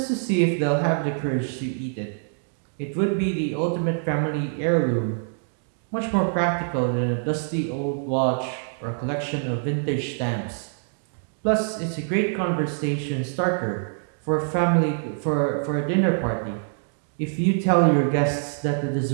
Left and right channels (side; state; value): left; silent; digital silence